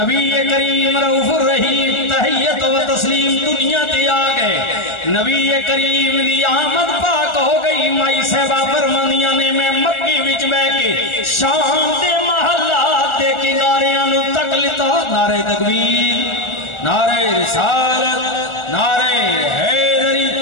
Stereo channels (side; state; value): right; late; 1.4 ms